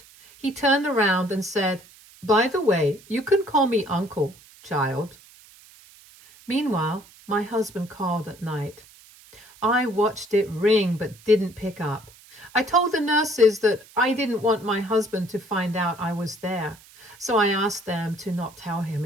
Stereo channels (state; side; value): noise; right; hiss, 24 dB below the sound